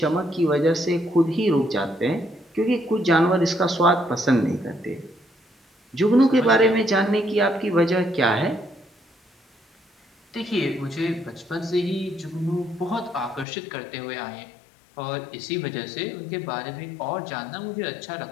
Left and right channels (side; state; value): right; drops out; at 13.5 s